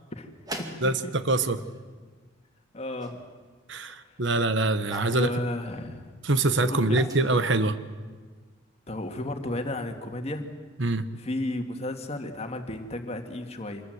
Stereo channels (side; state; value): both; normal; correlation 0.38